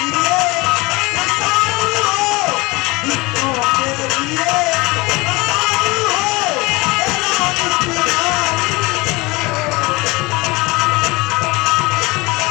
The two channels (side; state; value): right; quieter; 23.7 dB